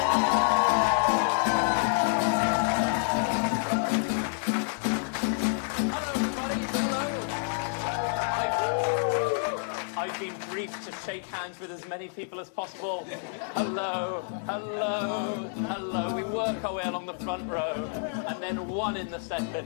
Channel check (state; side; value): silent; right; digital silence